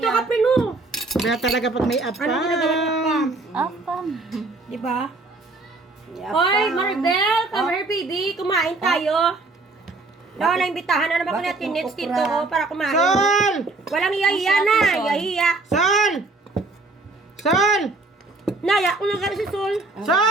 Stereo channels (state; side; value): quieter; left; 3.4 dB